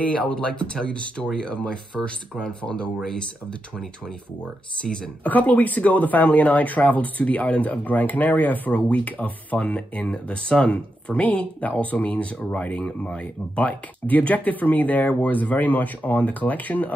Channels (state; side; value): normal; both; correlation 0.86